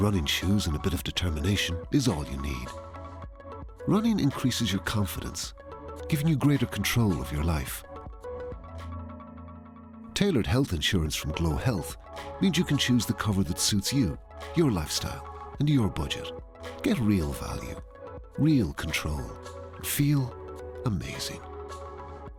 shoes and a bit of determination is all you need. Running increases your confidence, giving you greater control of your life. Tailored health insurance from GloHealth means you can choose the cover that suits you, your lifestyle, and your budget. Get real value, real control. Feel amazing.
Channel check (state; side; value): identical; both; correlation 1.00